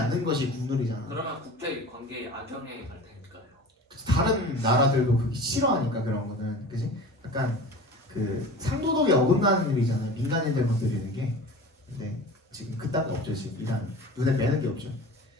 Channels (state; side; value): normal; both; correlation 0.37